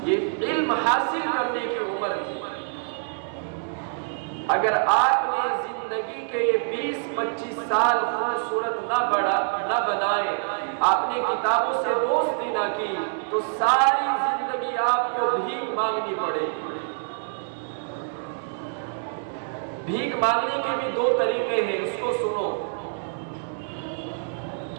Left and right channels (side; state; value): left; silent; digital silence